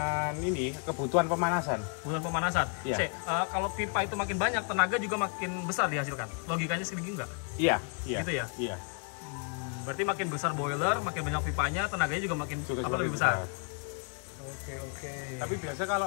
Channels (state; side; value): quieter; right; 39.6 dB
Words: ini kebutuhan pemanasan. Kebutuhan pemanasan. Iya. Kalau pipa itu makin banyak, tenaga juga makin besar dihasilkan. Logikanya segitu enggak? Iya. Gitu ya? Iya. Berarti makin besar boiler, makin banyak pipanya, tenaganya juga makin lebih besar. Oke. Tapi biasa